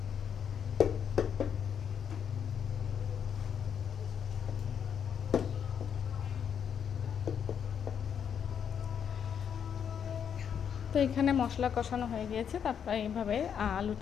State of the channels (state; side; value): quieter; right; 7.9 dB